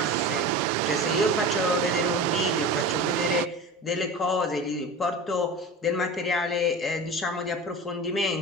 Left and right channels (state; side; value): normal; both; correlation 0.32